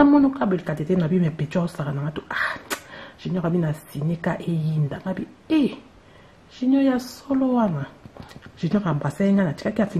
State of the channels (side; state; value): both; identical; correlation 1.00